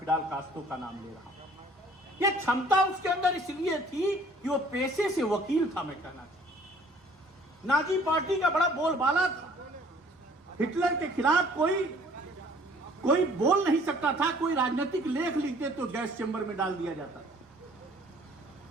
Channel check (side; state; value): both; normal; correlation 0.56